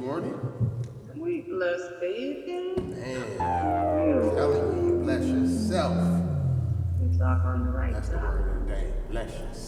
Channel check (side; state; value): both; identical; correlation 1.00